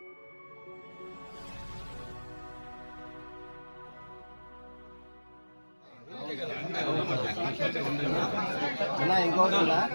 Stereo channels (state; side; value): inverted; both; correlation -1.00